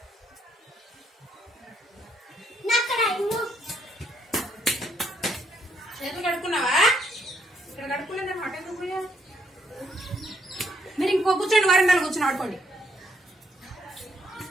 మీరు ఇంకో కూర్చోండి, వరండాలో కూర్చొని ఆడుకోండి.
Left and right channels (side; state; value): both; normal; correlation 0.73